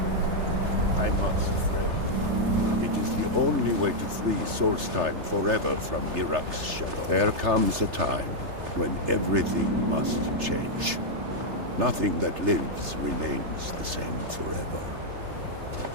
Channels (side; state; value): left; late; 3.3 ms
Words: I must, Freya. It is the only way to free Solstheim forever from Mirag's shadow. There comes a time when everything must change. Nothing that lives remains the same forever.